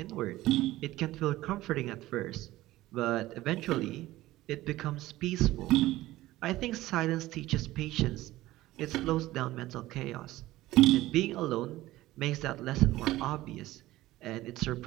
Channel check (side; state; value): left; quieter; 16.7 dB